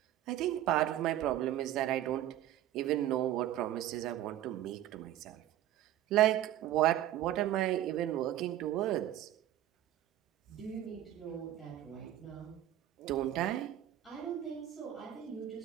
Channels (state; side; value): quieter; left; 12.8 dB